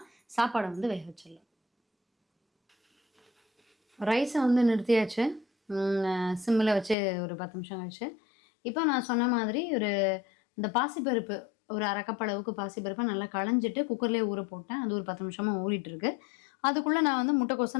சாப்பாடை வேக வச்சிடலாம். ரைஸை நிறுத்தியாச்சு. சிம்மில் வச்சு ஒரு 10 நிமிஷம் கழிச்சு. இப்போ நான் சொன்ன மாதிரி இந்த பாசிப்பருப்பு ஒரு அரை கப் அளவுக்கு பாசிப்பருப்பை நல்லா களைஞ்சிட்டு குக்கர்லேயே ஊற போட்டேன். அது ஒரு 10 நிமிஷமாக ஊறிட்டுருக்கு. அதுக்குள்ளே நான் முட்டைக்கோசை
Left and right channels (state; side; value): drops out; right; at 7.0 s